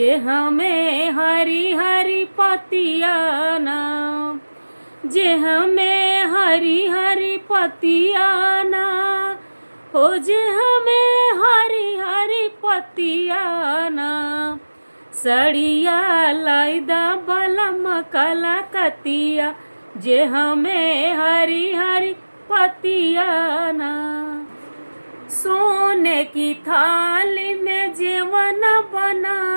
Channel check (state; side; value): inverted; both; correlation -1.00